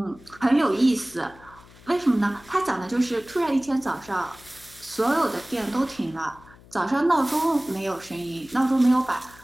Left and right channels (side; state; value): left; noise; hum, 23 dB below the sound